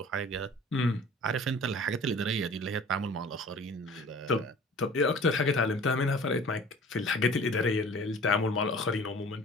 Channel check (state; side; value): normal; both; correlation 0.46